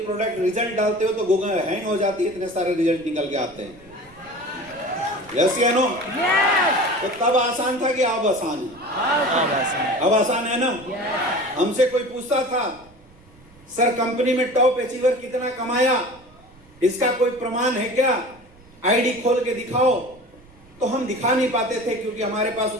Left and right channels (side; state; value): right; noise; rumble, 26 dB below the sound